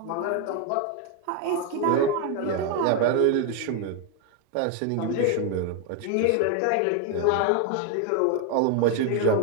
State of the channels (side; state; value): both; different; correlation 0.01